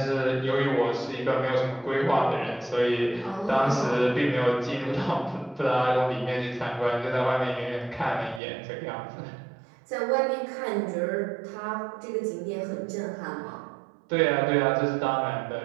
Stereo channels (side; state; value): left; drops out; at 8.4 s